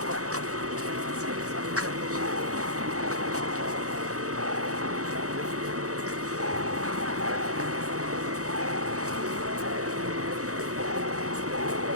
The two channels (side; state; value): left; late; 0.66 ms